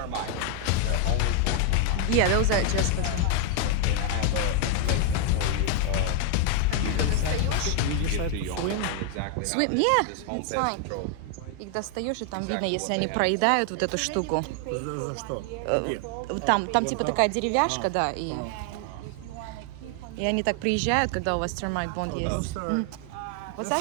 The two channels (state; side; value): different; both; correlation 0.00